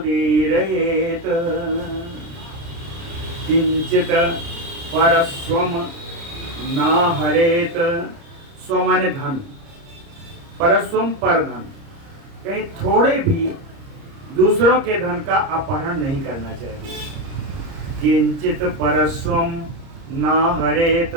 किंचित परस्वम न हरेत, स्व माने धन, परस्वम पर धन, कहीं थोड़े भी दूसरों के धन का अपहरण नहीं करना चाहिए। किंचित परस्वम ना हरेत,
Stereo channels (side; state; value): left; late; 30 ms